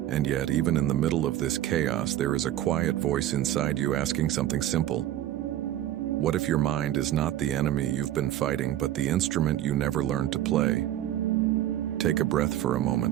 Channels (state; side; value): quieter; left; 12.7 dB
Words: yet, even in the middle of this chaos, there is a quiet voice inside you asking something simple. What if your mind is not the enemy you've been fighting, but the instrument you never learned to play? Take a breath for a